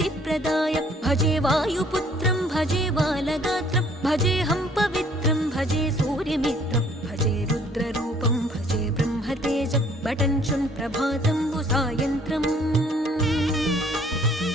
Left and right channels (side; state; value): both; normal; correlation 0.59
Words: भजे वायुपुत्रं भजे बालगात्रं भजेऽहं पवित्रं भजे सूर्यमित्रं भजे रुद्ररूपं भजे ब्रह्मतेजं बटञ्चुं प्रभातं सायन्त्रम्